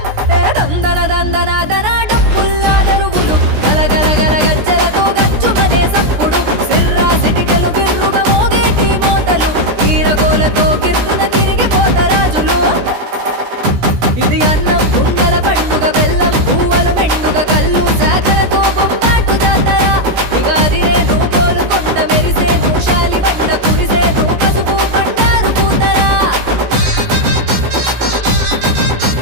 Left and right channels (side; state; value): left; late; 16 ms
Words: ఏ దందన దందన దన డప్పుల్లా దరువులు గలగల గల గజ్జలతో గజ్జుమనే సప్పుడు సిర్రా సిటికలు బిర్రుగా మోగేటి మోతలు ఈరగోలతో గిర్రున తిరిగిపోతరాజులు ఇది అన్నం కుండల పండుగ బెల్లం పువ్వులు మెండుగ కళ్ళు శాఖలతో బొంబాటు జాతర ఇగాదిరే నువ్వు గోలుకొండ మెరిసే నువ్వు శాలి బండ కురిసే నువ్వు పసుపు బండ